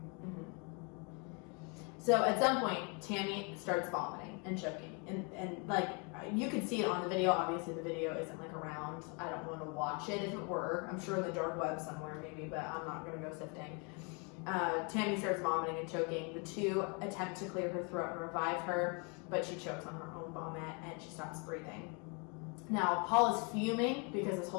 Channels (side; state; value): right; quieter; 33.9 dB